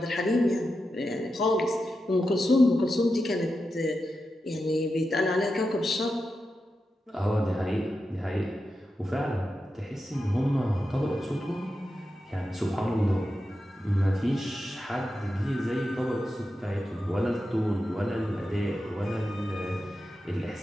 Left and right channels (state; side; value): normal; both; correlation 0.89